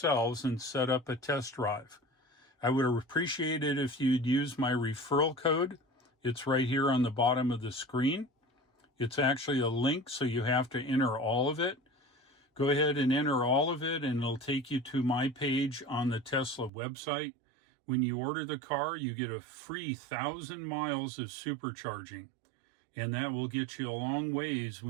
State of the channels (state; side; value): drops out; left; at 16.7 s